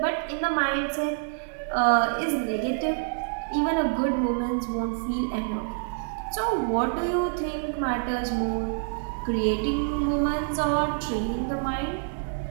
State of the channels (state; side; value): silent; left; digital silence